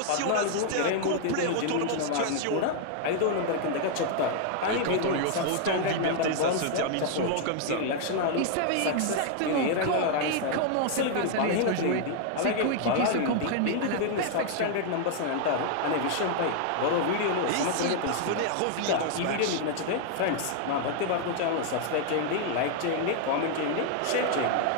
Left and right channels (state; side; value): different; both; correlation 0.00